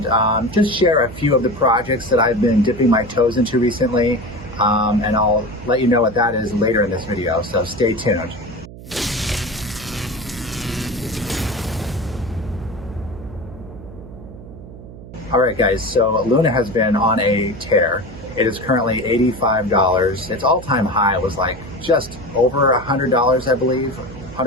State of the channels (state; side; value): noise; right; hum, 16 dB below the sound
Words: just share a few of the projects that I've been dipping my toes into recently, and I'll let you know what that is later in this video, so stay tuned. All right, guys, so Luna has been on a tear. It is currently $85. Its all-time high was like just over $100, I believe.